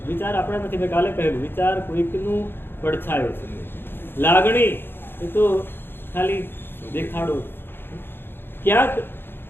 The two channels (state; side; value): late; right; 0.10 ms